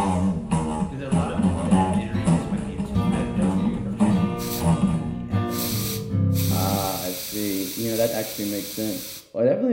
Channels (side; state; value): both; identical; correlation 1.00